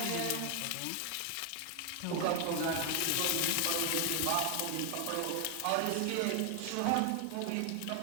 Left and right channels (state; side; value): different; both; correlation 0.00